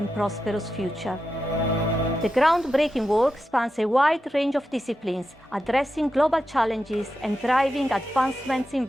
prosperous future. The groundbreaking work spans a wide range of disciplines, addressing global challenges and driving advancements in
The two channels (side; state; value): both; normal; correlation 0.89